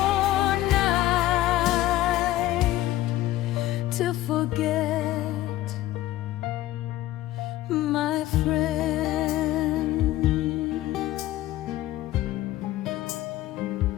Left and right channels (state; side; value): quieter; right; 15.3 dB